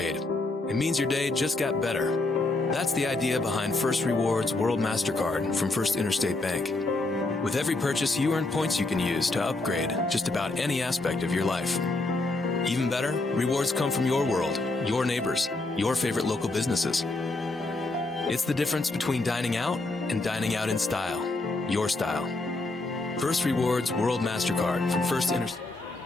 it means your day just got better. That's the idea behind First Rewards World MasterCard from First Interstate Bank. With every purchase, you earn points you can use to upgrade just about any aspect of your life. Even better, rewards come from your world, your neighbors, your favorite local businesses. It's the difference between dining out and dining out in style, your style. First Rewards World MasterCard from First Interstate.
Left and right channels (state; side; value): quieter; right; 3.1 dB